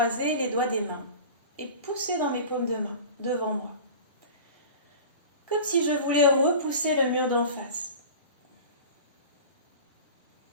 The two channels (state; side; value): inverted; both; correlation -0.37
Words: les doigts des mains et pousser dans mes paumes de main, devant moi. Comme si je voulais repousser le mur d'en face.